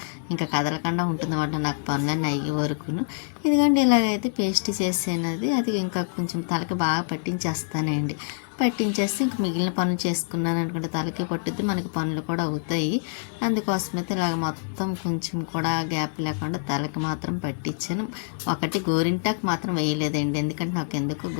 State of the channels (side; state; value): right; silent; digital silence